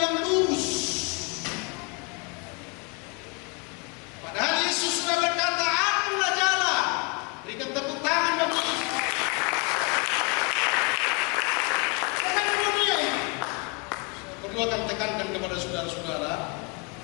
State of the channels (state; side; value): quieter; right; 32.8 dB